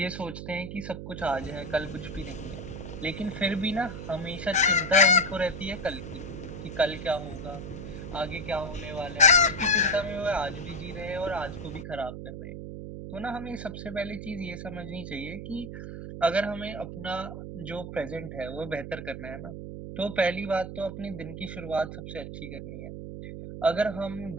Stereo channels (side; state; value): right; noise; hum, 8 dB below the sound